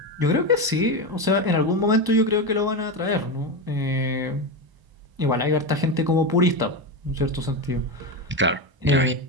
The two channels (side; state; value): left; late; 1.0 ms